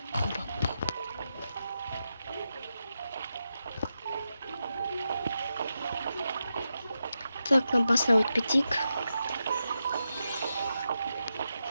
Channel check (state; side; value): inverted; both; correlation -0.88